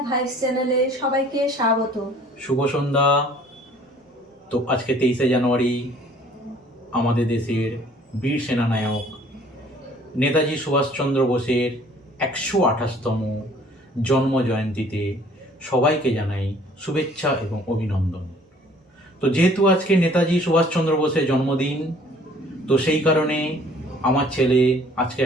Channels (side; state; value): both; normal; correlation 0.55